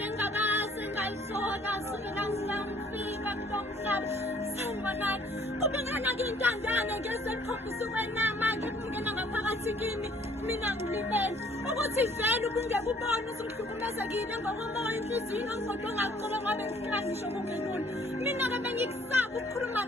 engakazi ngayihlola sukela ngifika kulo mhlaba sanibonani kubingana ngintandane ngesekhombisa ukwenama ngikungena ngaphakathi kimi mina ngilibele ukuthi vele ubungeke ubone usungihlukumezekile ngokomoya inhliziyo ngomfoto ongaqoba ngabe ngifika ngisho kungenuni mina ke bengikusaba ukukhuluma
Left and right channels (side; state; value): both; normal; correlation 0.59